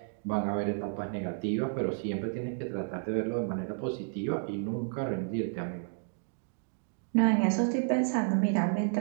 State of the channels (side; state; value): left; silent; digital silence